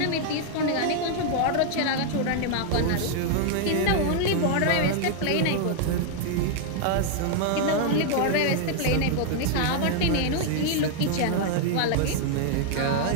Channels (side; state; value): both; different; correlation 0.00